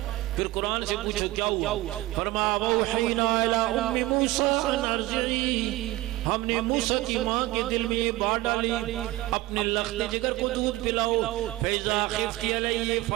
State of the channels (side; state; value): left; quieter; 18.2 dB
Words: پھر قرآن سے پوچھو کیا ہوا؟ فرمایا وَأَوْحَيْنَا إِلَىٰ أُمِّ مُوسَىٰ أَنْ أَرْضِعِيهِ، ہم نے موسیٰ کی ماں کے دل میں یہ بات ڈالی اپنے لخت جگر کو دودھ پلاؤ۔ فَإِذَا خِفْتِ عَلَيْهِ